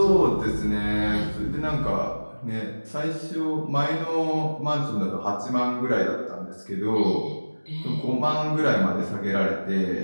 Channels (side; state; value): both; inverted; correlation -1.00